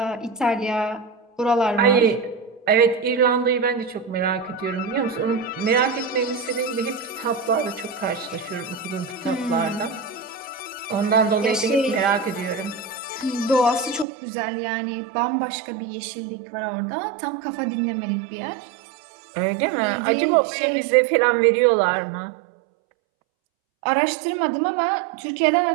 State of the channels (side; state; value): left; drops out; at 14.1 s